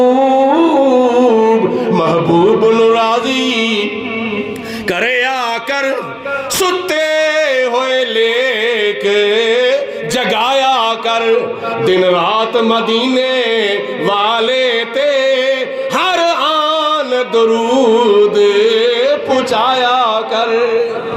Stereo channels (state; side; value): identical; both; correlation 1.00